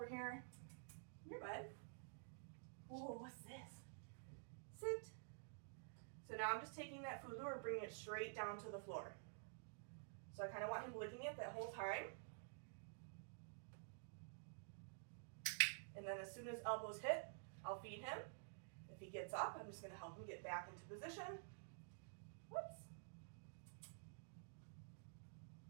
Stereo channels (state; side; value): silent; left; digital silence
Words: here. Here, bud. Whoa, what's this? Sit. So now I'm just taking that food lure and bringing it straight down to the floor. So I kind of want him licking it that whole time. And then as soon as elbows hit, I'll feed him. If he gets up, I'm just going to help him get back into position. Whoops.